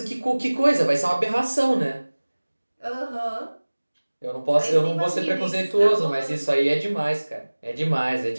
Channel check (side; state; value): both; inverted; correlation -1.00